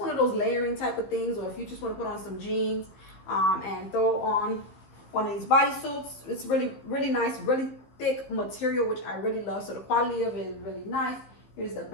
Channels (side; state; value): right; late; 15 ms